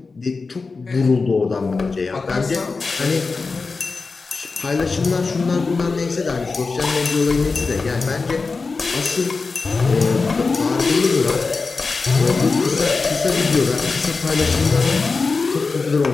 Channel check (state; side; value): quieter; right; 4.2 dB